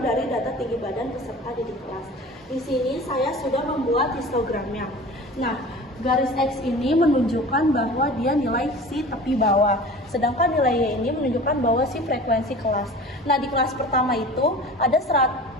dari data tinggi badan peserta didik kelas. Di sini saya sudah membuat histogramnya. Nah, garis X ini menunjukkan bahwa dia nilai si tepi bawah, sedangkan nilai Y ini menunjukkan bahwa si frekuensi kelas. Nah, di kelas pertama itu ada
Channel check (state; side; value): normal; both; correlation 0.39